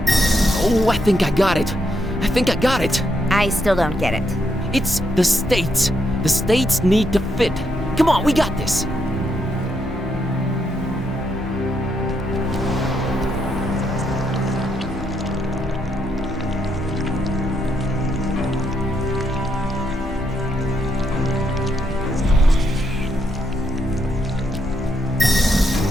Oh, I think I got it. I still don't get it. It's the states. The states need to fit. Come on, we got this.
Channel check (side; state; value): both; normal; correlation 0.78